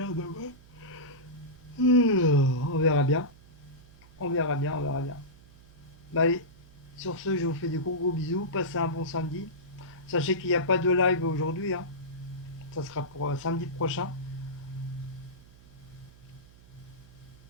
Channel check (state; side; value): noise; right; hum, 23 dB below the sound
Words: demain. On verra bien. On verra bien, on verra bien. Bah allez, sur ce, je vous fais des gros bisous. Passez un bon samedi. Sachez qu'il n'y a pas de live aujourd'hui, hein. Ça sera pour samedi prochain.